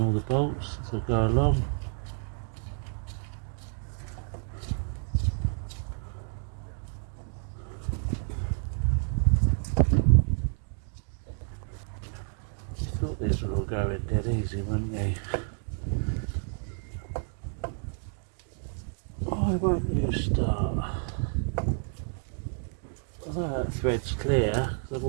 all the bolts as I go along. Thought these were all going dead easy, wouldn't they? Why won't you start? Although that thread's clear, because I've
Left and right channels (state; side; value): silent; left; 58 dB below the other